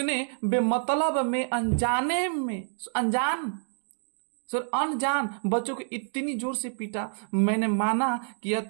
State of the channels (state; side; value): silent; left; digital silence